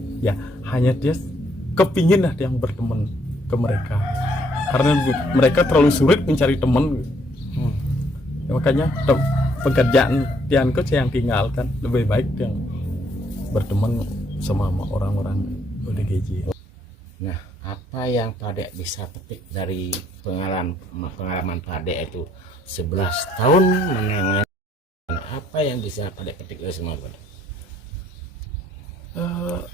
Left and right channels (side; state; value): both; normal; correlation 0.68